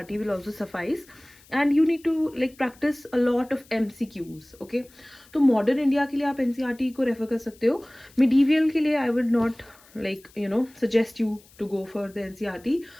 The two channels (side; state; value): left; noise; hiss, 27 dB below the sound